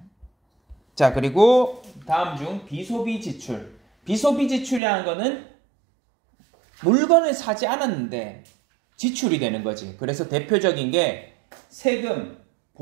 자, 그리고 다음 중 비소비 지출. 비소비 지출이라는 거는 물건을 사지 않았는데 지출이 되는 거지. 그래서 대표적인 게 세금,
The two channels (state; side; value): drops out; left; at 4.8 s